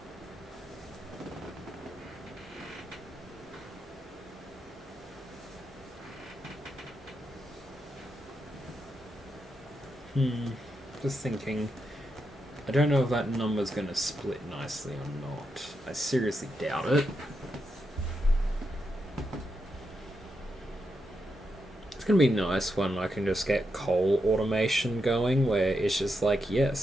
Just thinking. I don't know if that number's going to split nicely or not. I seriously doubt it. It's going to be nice when I can just get coal automation going, where it's just like,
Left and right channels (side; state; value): both; normal; correlation 0.85